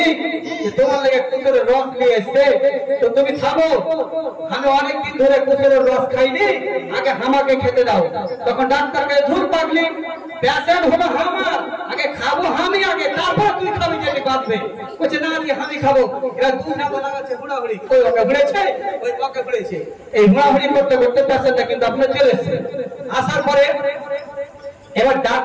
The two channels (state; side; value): identical; both; correlation 1.00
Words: তোমার লেগে কুসুরের রস নিয়ে এসছে, তো তুমি খাবো, আমি অনেকদিন ধরে কুসুরের রস খাইনি, আগে আমাকে খেতে দাও। তখন ডাক্তারকে ধুর পাগলি, পেশেন্ট হলো আমার, আগে খাবো আমি আগে, তারপর তুই খাবি যেটি বাঁচবে। বলছে না আমি খাবো। এরা দুটা বলা আছে হুড়াহুড়ি, ওই ওকে ঘুরেছে ওই ওকে ঘুরেছে, এই হুড়াহুড়ি করতে করতে পেশেন্টটা কিন্তু আপনার চলে এসছে। আসার পরে এবার